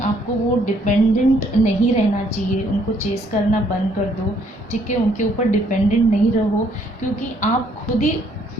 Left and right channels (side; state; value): both; normal; correlation 0.67